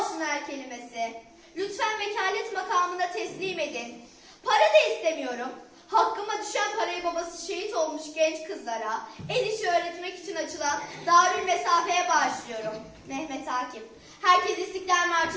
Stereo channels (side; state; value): both; identical; correlation 1.00